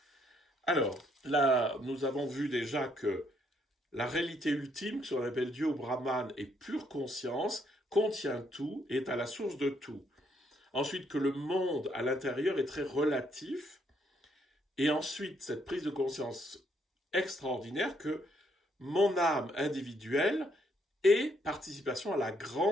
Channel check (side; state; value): both; normal; correlation 0.71